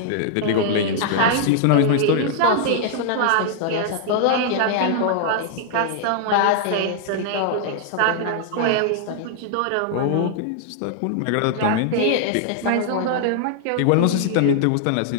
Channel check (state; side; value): different; both; correlation -0.01